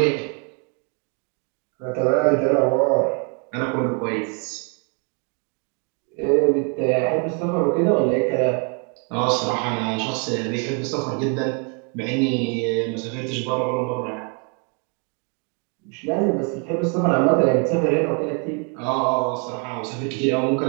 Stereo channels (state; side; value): quieter; left; 37.9 dB